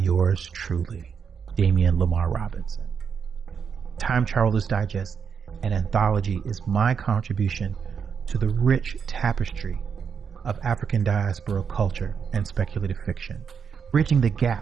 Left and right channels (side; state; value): left; quieter; 6.7 dB